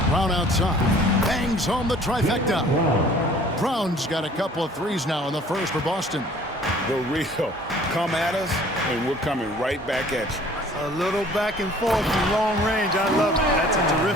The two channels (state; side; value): normal; both; correlation 0.52